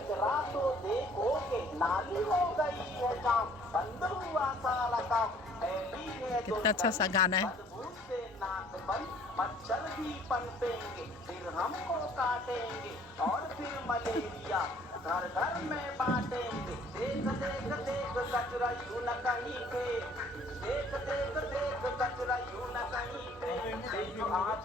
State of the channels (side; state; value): both; normal; correlation 0.57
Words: तो देखोगे, नाली हो गई है काम, बंद हुआ सारा काम, कितना अच्छा सा गाना है। से नाक बंद, मच्छर भी पनपेंगे, फिर हमको काटेंगे और फिर मलेरिया घर घर में बांटेंगे। देख देख देख कचरा यूं न कहीं फेंक, देख देख देख कचरा यूं न कहीं फेंक,